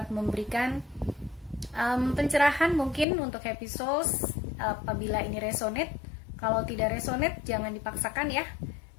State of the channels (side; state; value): right; drops out; at 3.1 s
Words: memberikan pencerahan mungkin untuk Happy Souls apabila ini resonate. Kalau tidak resonate jangan dipaksakan ya.